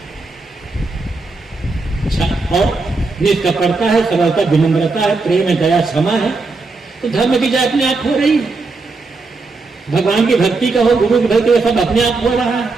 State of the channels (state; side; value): quieter; left; 3.7 dB